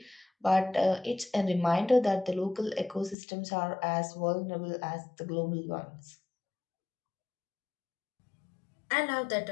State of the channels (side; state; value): right; drops out; at 3.2 s